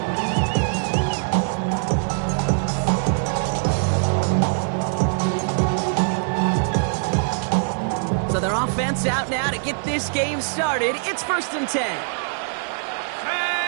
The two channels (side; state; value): left; silent; digital silence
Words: Offense out now to get this game started. It's 1st and 10.